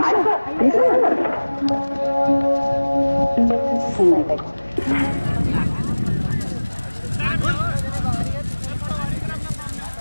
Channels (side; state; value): both; inverted; correlation -1.00